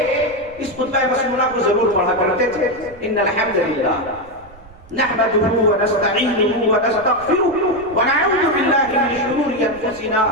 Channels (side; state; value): right; noise; rumble, 23 dB below the sound